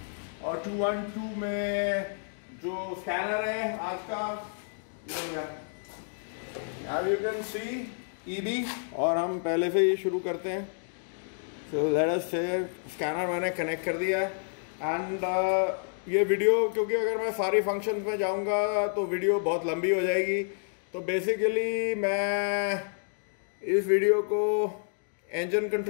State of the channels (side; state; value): right; silent; digital silence